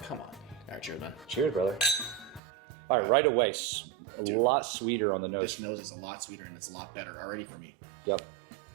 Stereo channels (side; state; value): left; drops out; at 2.4 s